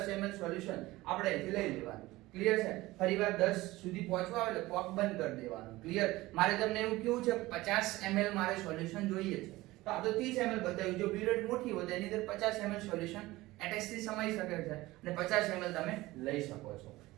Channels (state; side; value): quieter; left; 18.8 dB